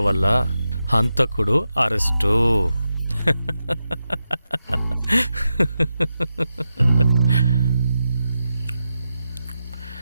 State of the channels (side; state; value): both; inverted; correlation -0.89